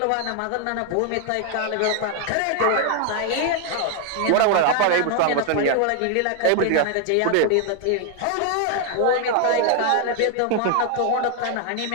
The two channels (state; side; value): different; both; correlation 0.00